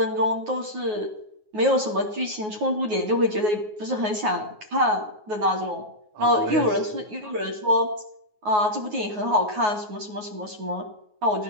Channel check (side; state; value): left; late; 9.5 ms